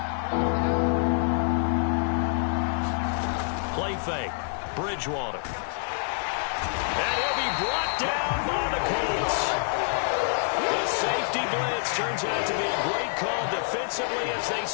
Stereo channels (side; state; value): right; silent; 60 dB below the other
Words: Play fake. Bridgewater. And he'll be brought down by the Colts. The safety blitz turns out to be a great call defensively as they